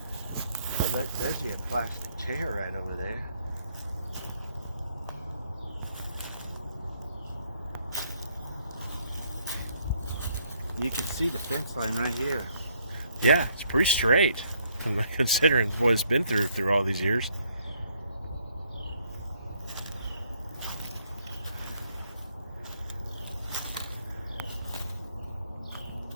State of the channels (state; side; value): inverted; both; correlation -0.69